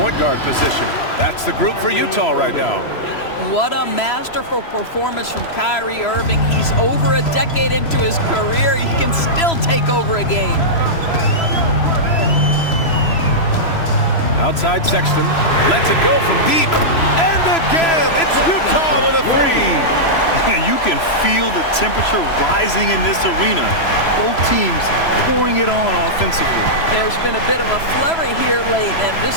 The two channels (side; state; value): right; late; 3.0 ms